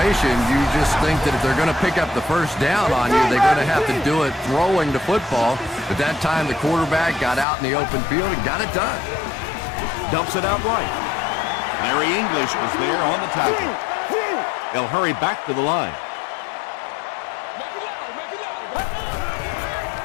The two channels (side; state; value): right; drops out; at 7.5 s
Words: you just think that if they're going to pick up the first down on you, they're going to have to do it throwing the football. But that time, the quarterback got out in the open field and got it done. Dumps it out right. Larry English was there on the tackle. They'll hurry back to the line.